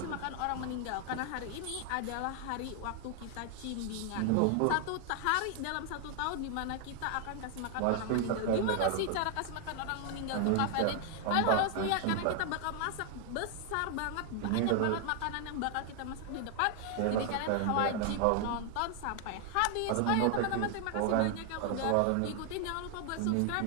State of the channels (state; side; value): different; both; correlation 0.00